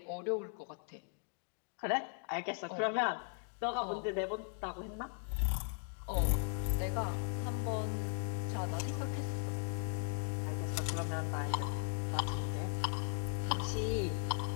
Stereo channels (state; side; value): silent; right; 52 dB below the other